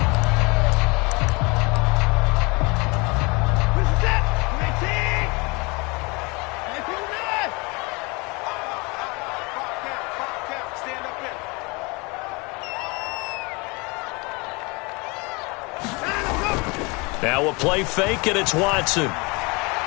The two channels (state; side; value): quieter; right; 27.8 dB